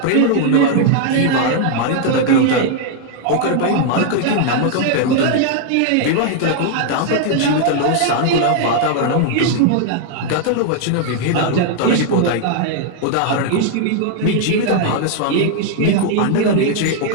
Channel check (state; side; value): different; both; correlation 0.00